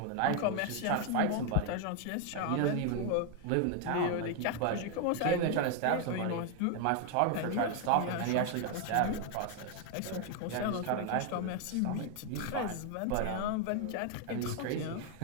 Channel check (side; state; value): both; different; correlation 0.01